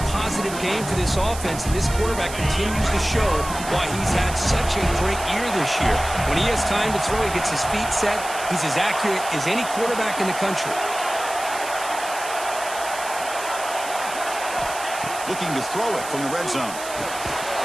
positive game for this offense, and this quarterback continues to show why he's had such a great year this year. When he has time to throw, he gets his feet set. He's as accurate as any quarterback in the country. Looking to throw it from the red zone.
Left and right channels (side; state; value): right; noise; hiss, 11 dB below the sound